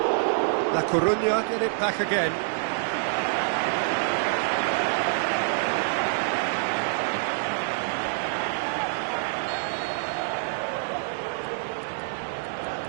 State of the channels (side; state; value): left; silent; digital silence